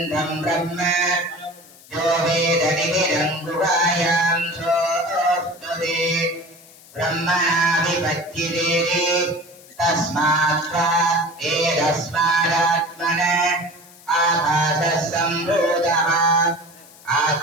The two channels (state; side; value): noise; left; hiss, 23 dB below the sound